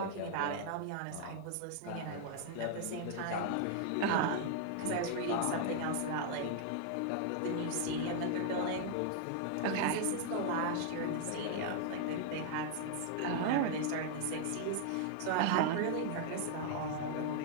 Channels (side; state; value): both; different; correlation 0.00